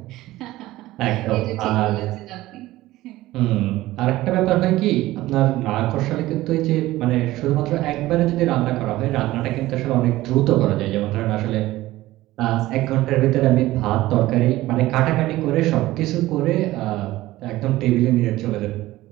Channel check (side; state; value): left; quieter; 16.9 dB